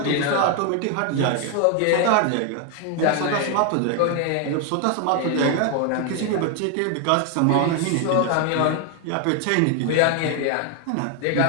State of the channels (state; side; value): different; both; correlation 0.00